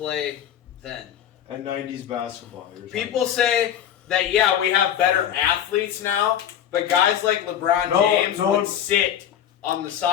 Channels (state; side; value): quieter; right; 9.9 dB